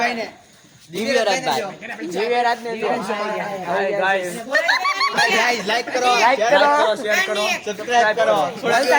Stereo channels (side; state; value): both; identical; correlation 1.00